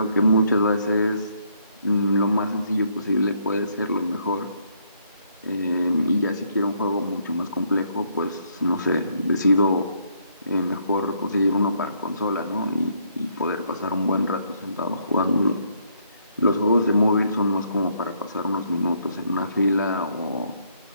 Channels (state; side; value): inverted; both; correlation -0.71